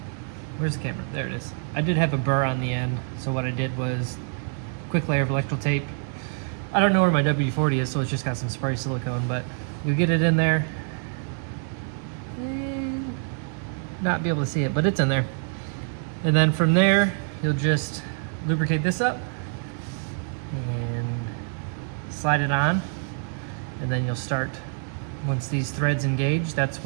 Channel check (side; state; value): left; silent; 56 dB below the other